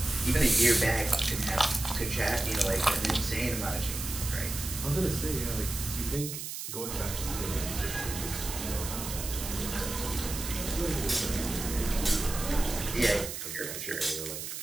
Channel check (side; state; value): right; noise; hiss, 7 dB below the sound